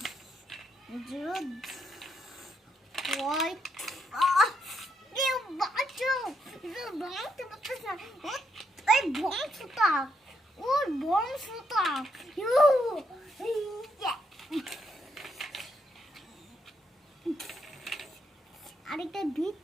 ভাঙতে পারতেছ না, ওই বংশটা, ওর বংশটা আরেকটা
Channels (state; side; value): normal; both; correlation 0.78